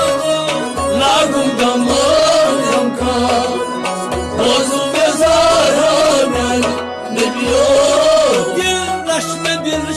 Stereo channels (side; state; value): both; identical; correlation 1.00